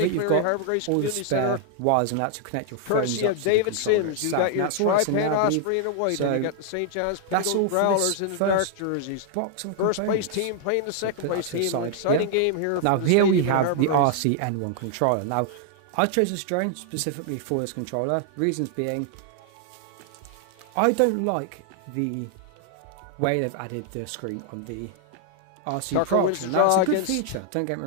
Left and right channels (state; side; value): different; both; correlation 0.00